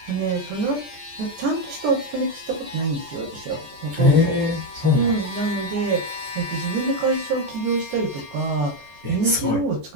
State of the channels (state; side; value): late; left; 14 ms